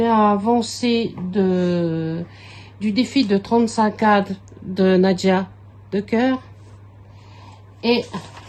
du défi de 35 cadres de Nadia de cœur. Et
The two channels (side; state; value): both; identical; correlation 1.00